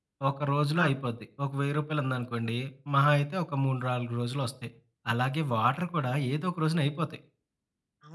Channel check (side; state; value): both; identical; correlation 1.00